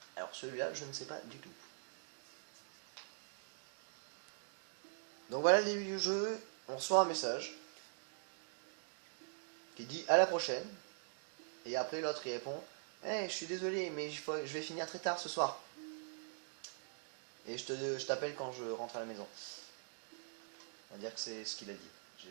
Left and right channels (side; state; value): left; silent; digital silence